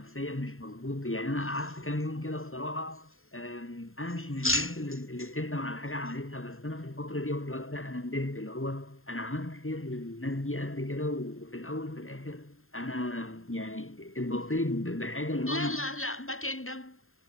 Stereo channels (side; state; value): right; late; 0.61 ms